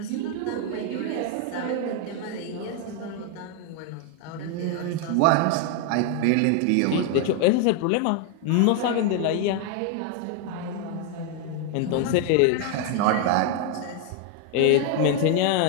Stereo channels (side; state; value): both; different; correlation 0.01